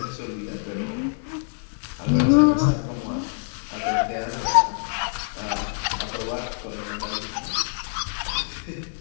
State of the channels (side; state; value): right; silent; digital silence